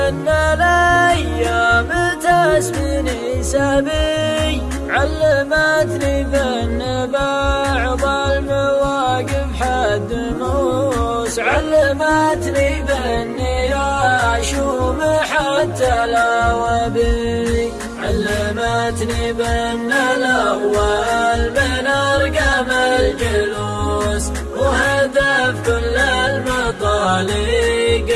الأيام تسبني سبي، علمتني بأن بعض المواقف حد موس، علمتني بأني أشوم حتى الأوابي، علمتني بأن الأول من أرقام الجلوس، وهدف كل المطالق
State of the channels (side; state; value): both; identical; correlation 1.00